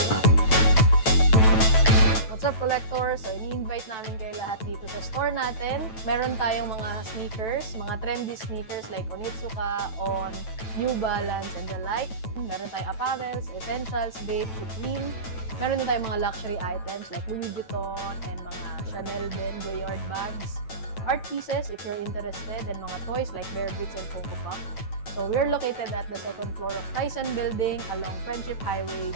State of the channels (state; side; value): late; right; 9.1 ms